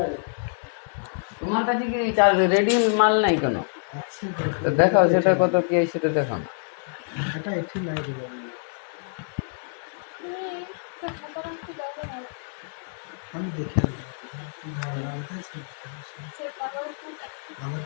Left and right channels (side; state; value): right; silent; 61 dB below the other